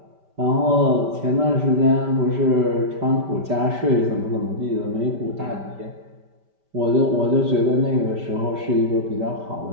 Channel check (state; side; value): late; left; 5.1 ms